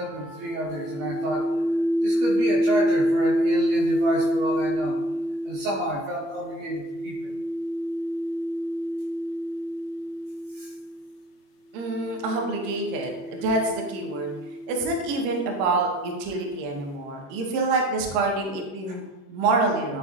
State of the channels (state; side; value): late; left; 21 ms